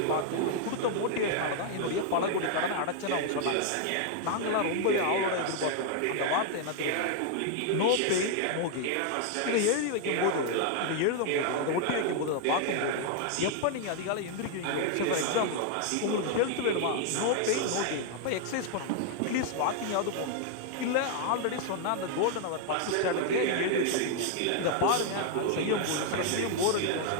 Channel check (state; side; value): different; both; correlation 0.00